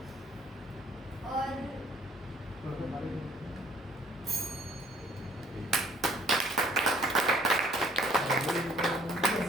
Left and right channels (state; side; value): normal; both; correlation 0.59